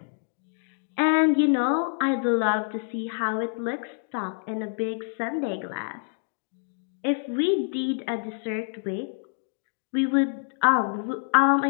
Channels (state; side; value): silent; right; digital silence